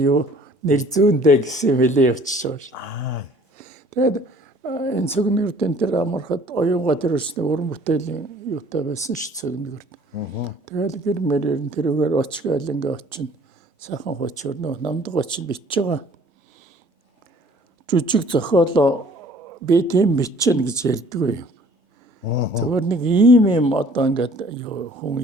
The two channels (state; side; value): normal; both; correlation 0.54